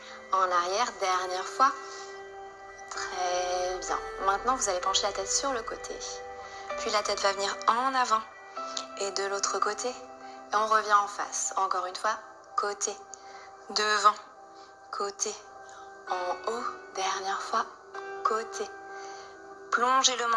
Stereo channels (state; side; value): identical; both; correlation 1.00